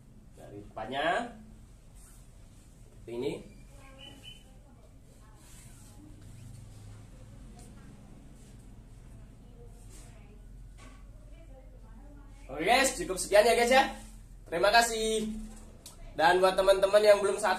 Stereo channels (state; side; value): identical; both; correlation 1.00